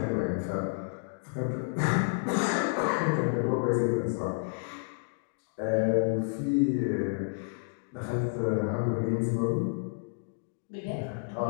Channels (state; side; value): silent; right; digital silence